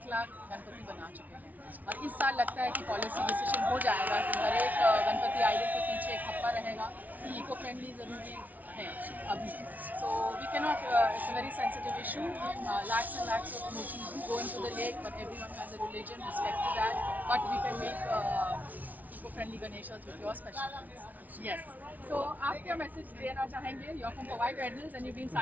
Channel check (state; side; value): late; left; 0.076 ms